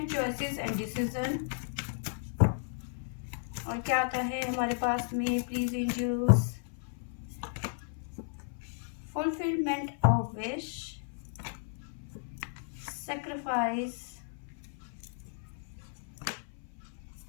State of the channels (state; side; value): silent; right; 55 dB below the other